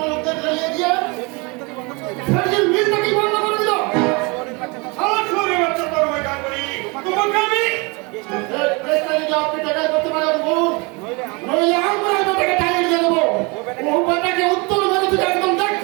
লোকদের রেলে দিয়ে বন্ধ করে দিল ফেরজির মিলটাকে বন্ধ করে দিল শহরের বাচ্চা সালা চোরে বাচ্চা তোর ভাই কাজ করি তোমাকে আমি কেসটা যদি আপনি টাকা করতে পারেন বলুন নইলে নইলে আমরা বেটাকে টাইট দিয়ে দেবো ও বেটাকে উত্তর মেরে তুই একদম দেখ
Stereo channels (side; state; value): left; quieter; 28.7 dB